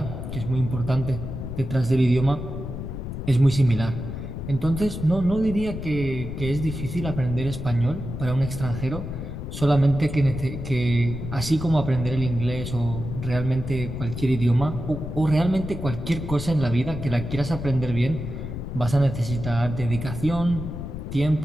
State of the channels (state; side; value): noise; left; rumble, 7 dB below the sound